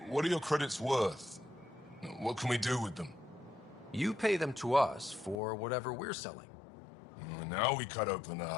What are your credits worth? What can we do with them? You pay them to us for whatever we're selling. Now we cut open the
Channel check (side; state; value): right; drops out; at 5.4 s